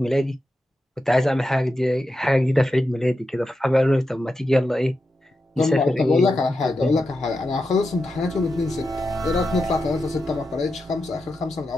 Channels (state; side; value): normal; both; correlation 0.89